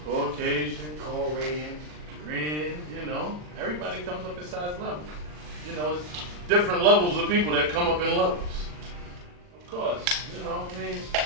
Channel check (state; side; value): late; left; 40 ms